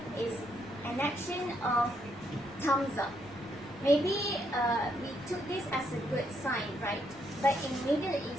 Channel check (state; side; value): noise; left; rumble, 24 dB below the sound